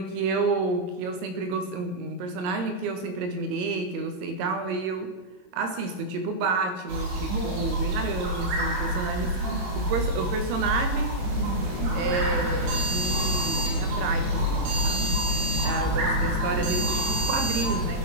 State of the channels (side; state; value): left; late; 22 ms